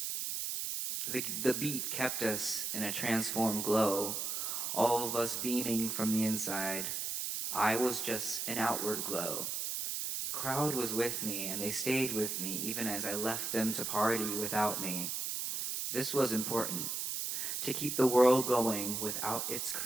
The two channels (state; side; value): noise; right; hiss, 2 dB below the sound